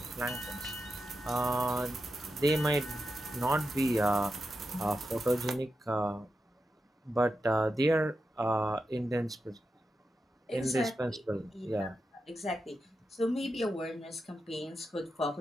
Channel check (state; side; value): normal; both; correlation 0.88